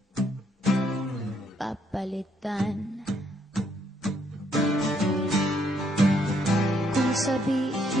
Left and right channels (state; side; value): normal; both; correlation 0.71